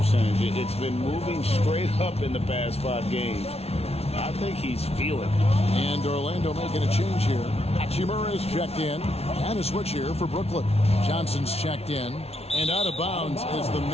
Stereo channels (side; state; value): right; late; 0.30 ms